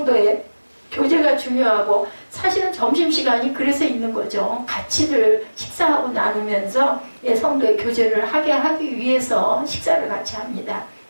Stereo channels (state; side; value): inverted; both; correlation -1.00